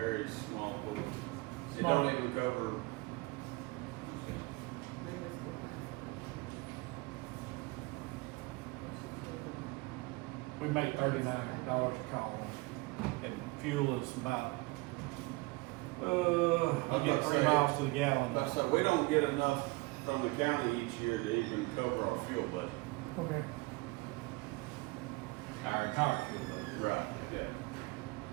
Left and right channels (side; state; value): left; quieter; 24.3 dB